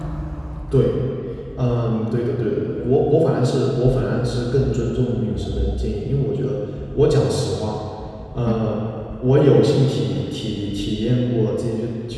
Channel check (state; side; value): identical; both; correlation 1.00